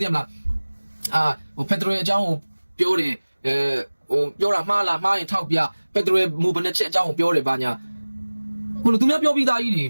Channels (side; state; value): both; inverted; correlation -1.00